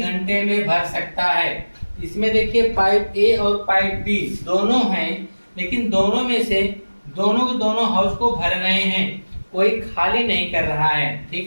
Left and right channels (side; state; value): both; inverted; correlation -1.00